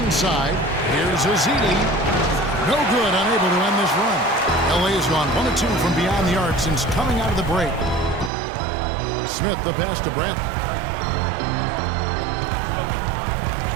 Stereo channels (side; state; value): left; drops out; at 8.3 s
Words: here's Ezeli. No good, unable to end this run. LA has gone 1 of 2 from beyond the arc since coming out of the break. Smith the pass to Bradley.